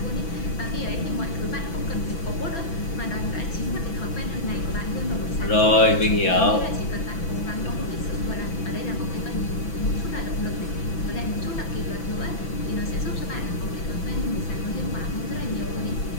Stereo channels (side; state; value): right; late; 6.0 ms